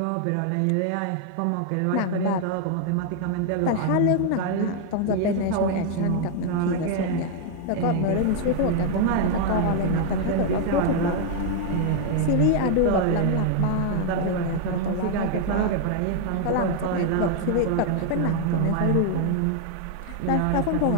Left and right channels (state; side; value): different; both; correlation 0.00